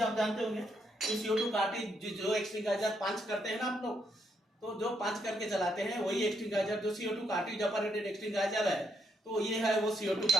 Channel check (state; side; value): normal; both; correlation 0.76